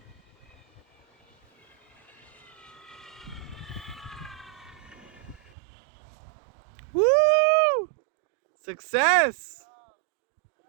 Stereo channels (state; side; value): drops out; left; at 5.4 s